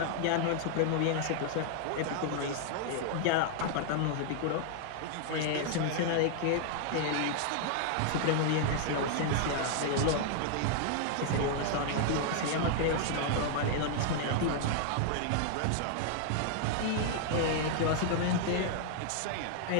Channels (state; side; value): different; both; correlation 0.00